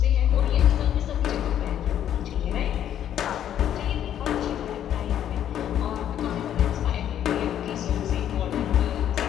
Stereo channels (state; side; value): quieter; right; 10.4 dB